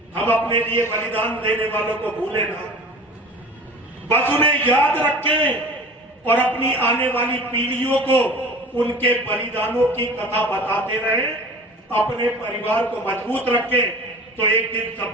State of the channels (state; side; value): normal; both; correlation 0.40